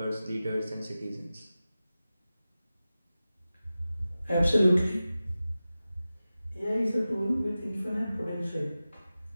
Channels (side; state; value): both; inverted; correlation -0.95